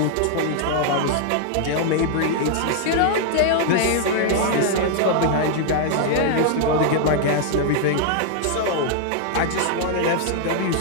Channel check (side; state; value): both; different; correlation 0.00